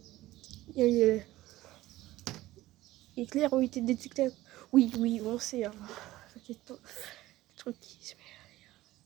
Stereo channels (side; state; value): left; quieter; 16.7 dB